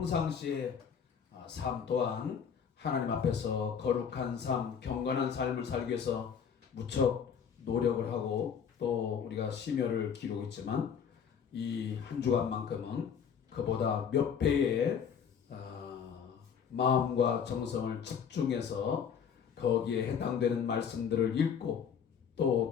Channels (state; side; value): quieter; right; 7.3 dB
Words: 삶 또한 하나님 앞에서 거룩한 삶, 경건한 삶을 살기 위해서 무척 노력을 하고 또 우리가 심혈을 기르고 있지만 이 한 주간만큼은 그보다 몇 배의 마음과 정성을 집중해서 거기에 해당되는 말씀들을 읽고 또